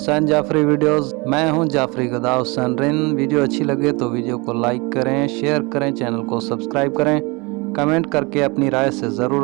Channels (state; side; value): quieter; left; 27.1 dB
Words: جعفری ویڈیوز۔ میں ہوں جعفری گدا حسین رن۔ ویڈیو اچھی لگے تو ویڈیو کو لائک کریں، شیئر کریں، چینل کو سبسکرائب کریں، کمنٹ کر کے اپنی رائے سے